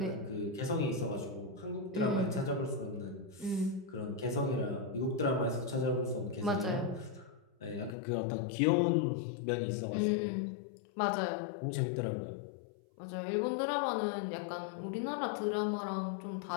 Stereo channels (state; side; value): drops out; right; at 8.0 s